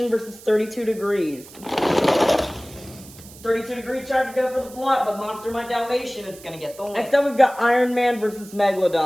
versus 32 Degrees. 32 Degrees tried to go for the block, but Monster Mutt Dalmatian is going to get the win. Next up, we've got Iron Man versus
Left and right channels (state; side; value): noise; right; hiss, 20 dB below the sound